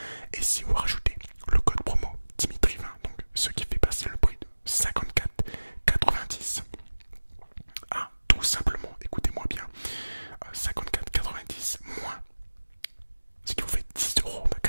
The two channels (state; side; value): inverted; both; correlation -1.00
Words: Et si vous rajoutez le code promo Dimitri20, donc ce qui fait passer le prix de 54,90 à tout simplement, écoutez-moi bien, 54,90 moins, ce qui vous fait 10 €,